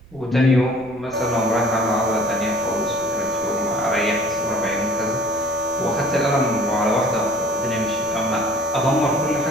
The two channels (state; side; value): noise; right; rumble, 24 dB below the sound